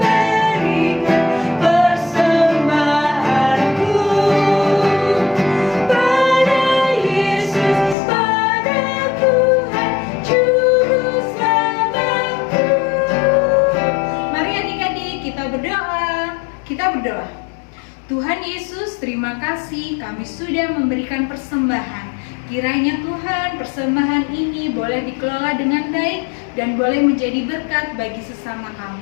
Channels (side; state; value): right; drops out; at 8.0 s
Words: kasih kami sudah memberikan persembahan. Kiranya Tuhan, persembahan ini boleh dikelola dengan baik dan boleh menjadi berkat bagi sesama kami.